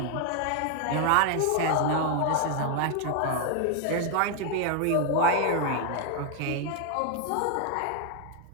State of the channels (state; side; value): different; both; correlation 0.00